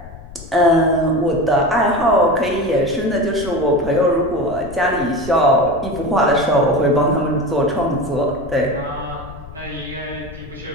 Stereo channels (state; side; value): noise; left; rumble, 16 dB below the sound